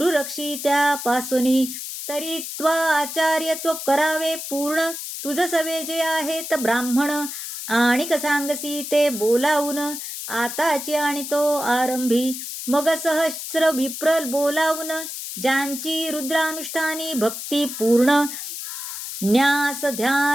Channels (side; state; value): left; noise; hiss, 7 dB below the sound